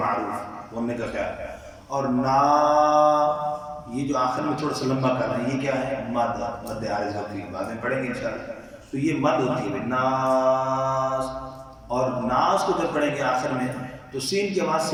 बोलने का ख्याल है। और ना ये जो आखिर में थोड़ा सा लंबा करना है, ये क्या है, मद, मद आरिज़ होती है, बाद में पढ़ेंगे इंशाअल्लाह। तो ये मद होती है नास, और नास को जब पढ़ेंगे आखिर में तो सीन की आवाज़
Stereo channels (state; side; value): identical; both; correlation 1.00